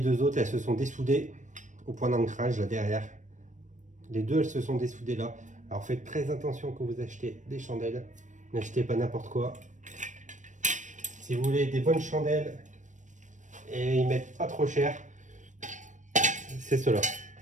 deux autres, elles se sont dessoudées au point d'ancrage là derrière. Les deux, elles se sont dessoudées là. Alors faites très attention quand vous achetez des chandelles. N'achetez pas n'importe quoi. Si vous voulez des bonnes chandelles et ils mettent pas trop cher, c'est ceux-là.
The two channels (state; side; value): late; left; 0.36 ms